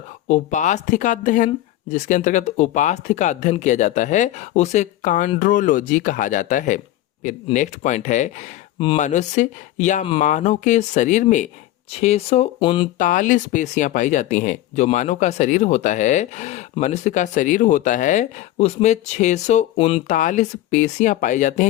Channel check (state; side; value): quieter; right; 14.6 dB